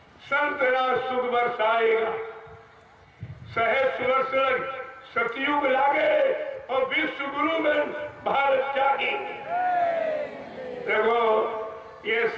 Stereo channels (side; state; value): both; identical; correlation 1.00